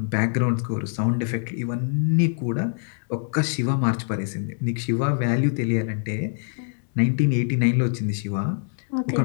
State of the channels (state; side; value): silent; right; digital silence